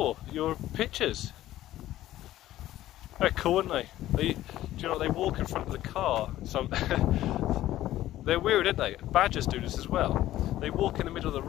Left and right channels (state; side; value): quieter; right; 14.2 dB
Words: your pictures. They're cool, aren't they? Do you know, they walk in front of the car. They're weird, aren't they? Badgers do this as well. They walk in the middle of the